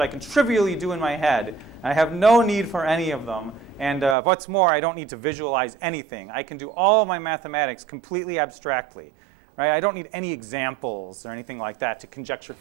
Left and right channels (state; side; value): drops out; left; at 4.2 s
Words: I can trivially do in my head. I have no need for any of them. And what's more, I don't need to visualize anything. I can do all of my mathematics completely abstractly. Right? I don't need any examples or anything like that to conjecture